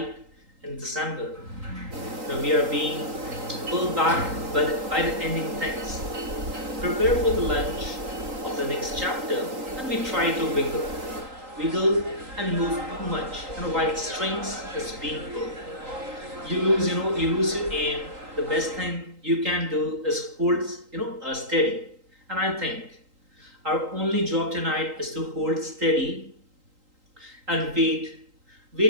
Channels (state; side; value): late; left; 3.8 ms